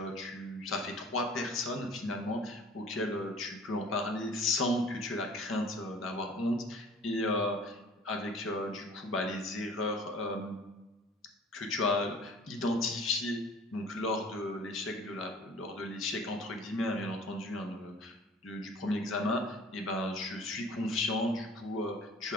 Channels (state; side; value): normal; both; correlation 0.48